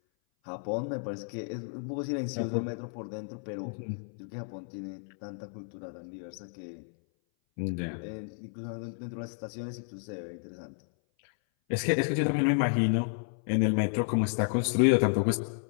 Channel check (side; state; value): right; silent; 57 dB below the other